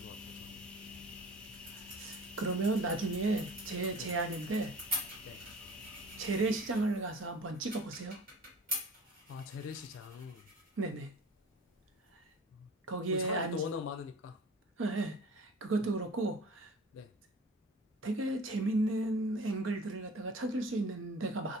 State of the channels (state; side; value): normal; both; correlation 0.42